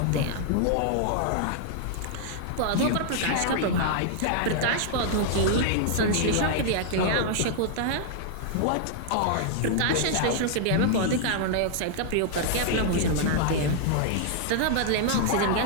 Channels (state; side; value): different; both; correlation -0.01